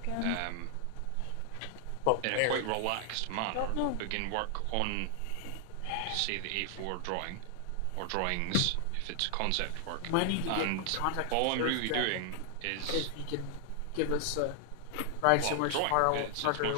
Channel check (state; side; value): different; both; correlation 0.00